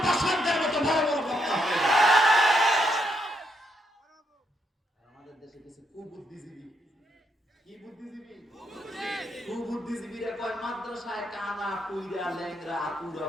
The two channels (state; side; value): normal; both; correlation 0.77